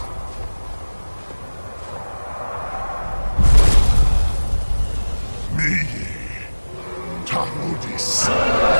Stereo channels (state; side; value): inverted; both; correlation -1.00